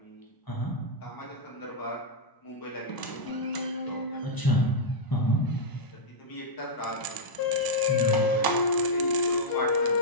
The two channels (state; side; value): late; right; 1.0 ms